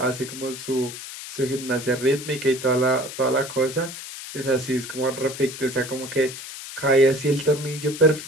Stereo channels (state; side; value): noise; left; hiss, 11 dB below the sound